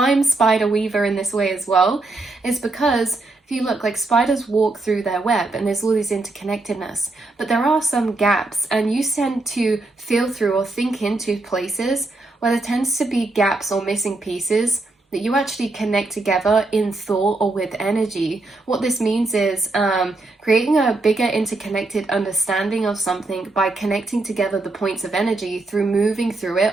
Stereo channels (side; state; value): left; quieter; 3.1 dB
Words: spider weaver in this way as well, is because if you look, like spiders walk through their web and there's all these interconnectedness, but there are some gaps, and you tend to feel through or think into places where there tends to be gaps or missing pieces that you actually connect together in thought or with energy. What this means is creating a bigger interconnected understanding of something by connecting together the points of energy through moving through it